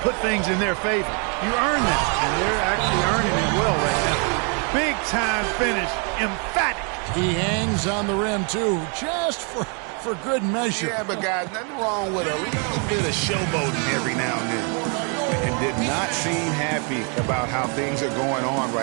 put things in their favor. You earn that, and they're actually earning it well right now. Big time finish. Emphatic. He hangs on the rim, too, just for good measure. Yeah, but guys, nothing wrong with a little bit of showboating every now and then. And did not seem happy about how things are going on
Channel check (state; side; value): quieter; left; 37.7 dB